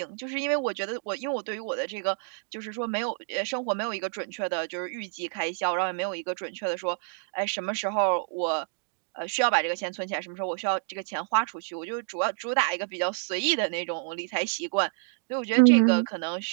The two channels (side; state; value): left; silent; 59 dB below the other